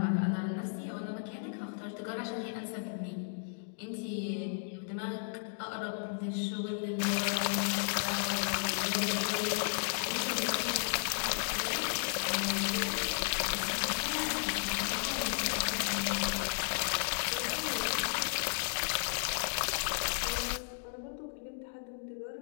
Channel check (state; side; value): silent; right; digital silence